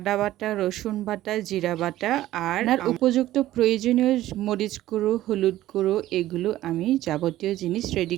বাটা, রসুন বাটা, জিরা বাটা আর উপযুক্ত প্রয়োজনীয় মরিচ গুঁড়ো, হলুদ গুঁড়ো, এগুলো আমি যাবতীয় জিনিস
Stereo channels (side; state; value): left; quieter; 14.7 dB